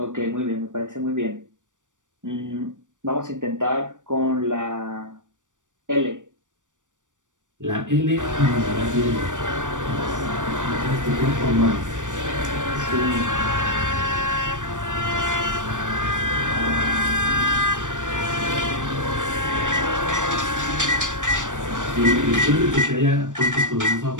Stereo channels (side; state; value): left; late; 0.87 ms